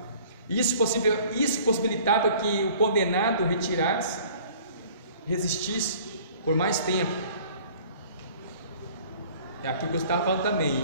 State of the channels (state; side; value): inverted; both; correlation -0.51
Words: Isso possibilitava que o condenado retirasse, resistisse por mais tempo. É aquilo que eu estava falando também.